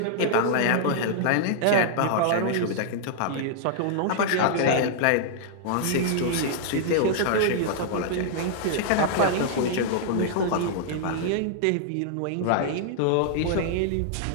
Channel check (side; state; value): both; different; correlation -0.01